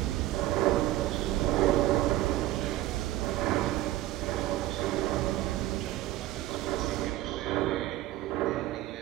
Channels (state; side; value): quieter; left; 15.5 dB